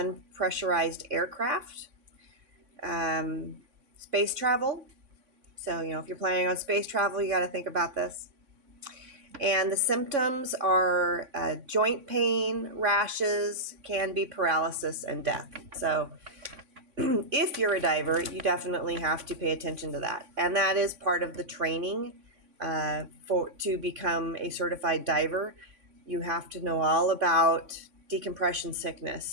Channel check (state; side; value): late; left; 3.5 ms